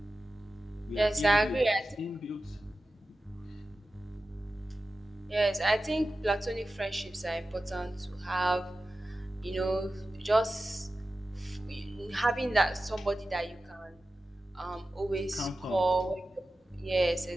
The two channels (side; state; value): both; normal; correlation 0.94